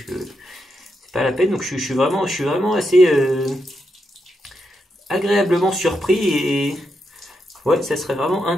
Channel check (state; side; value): normal; both; correlation 0.83